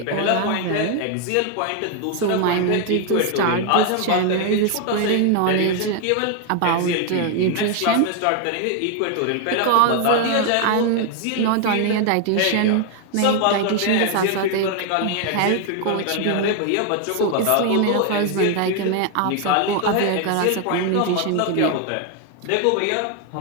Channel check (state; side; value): different; both; correlation 0.00